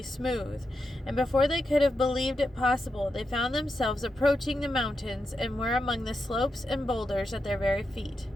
smooth, and before they could have believed it possible, they found themselves approaching the mountains and were among the slopes and boulders at their very feet.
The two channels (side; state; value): both; normal; correlation 0.87